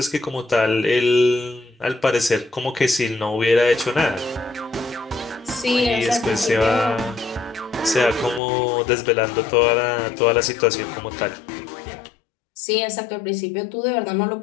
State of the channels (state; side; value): drops out; right; at 8.4 s